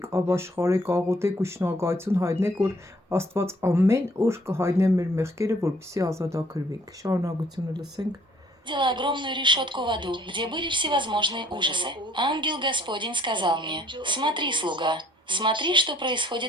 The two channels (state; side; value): normal; both; correlation 0.61